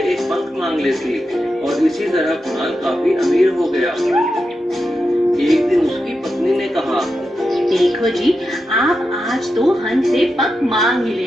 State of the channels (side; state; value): both; normal; correlation 0.88